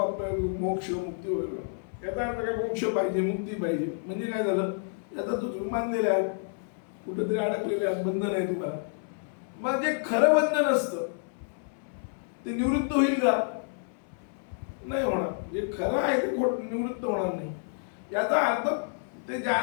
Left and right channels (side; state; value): right; silent; 58 dB below the other